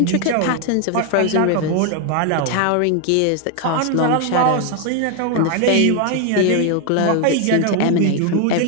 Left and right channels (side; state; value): both; different; correlation 0.01